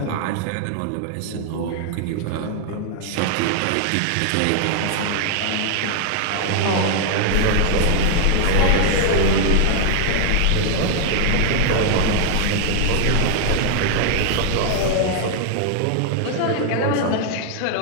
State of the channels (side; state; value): both; different; correlation 0.00